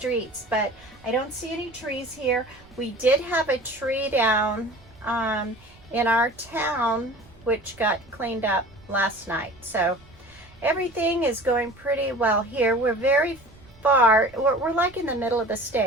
but I don't see any trees here. We did have a tree down in our town, which got cleaned up last night. So everything is going pretty well here. We're very far, we're like in the middle of the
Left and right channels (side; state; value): right; noise; rumble, 26 dB below the sound